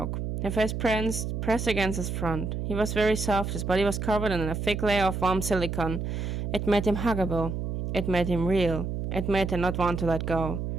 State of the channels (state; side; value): noise; right; hum, 3 dB below the sound